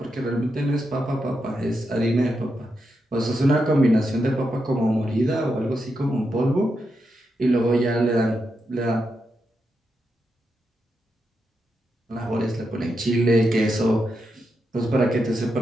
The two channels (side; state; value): both; normal; correlation 0.85